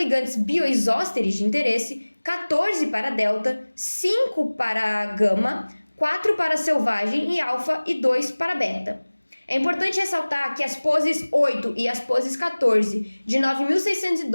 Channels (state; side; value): inverted; both; correlation -1.00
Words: bioisósteres de interesse, 14 para delta, 5 para gama, 4 para selvagem e alfa e 2 para beta. É importante ressaltar que as poses 8 e as poses 14 de